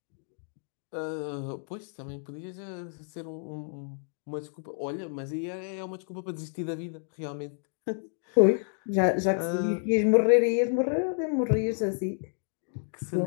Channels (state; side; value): silent; right; 58 dB below the other